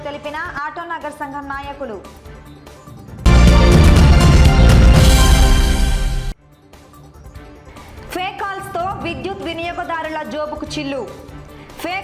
తెలిపిన ఆటోనగర్ సంఘం నాయకులు. ఫేక్ కాల్స్తో విద్యుత్ వినియోగదారుల జోబుకు చిల్లు.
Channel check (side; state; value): both; identical; correlation 1.00